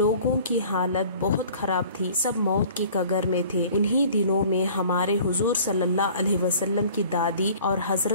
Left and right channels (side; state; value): both; inverted; correlation -0.49